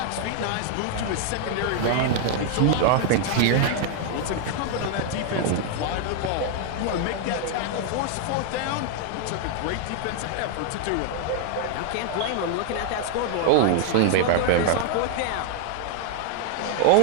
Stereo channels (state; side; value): different; both; correlation 0.00